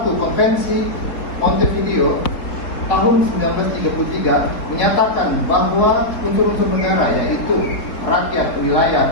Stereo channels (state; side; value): late; right; 4.0 ms